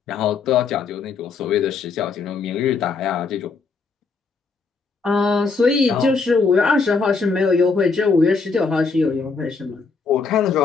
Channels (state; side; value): quieter; right; 4.7 dB